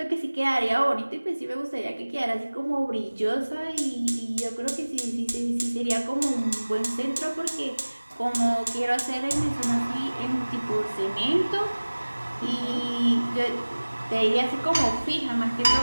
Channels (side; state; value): both; inverted; correlation -1.00